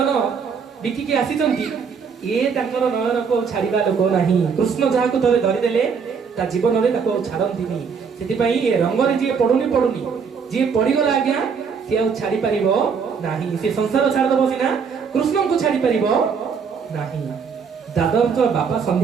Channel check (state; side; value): quieter; left; 6.0 dB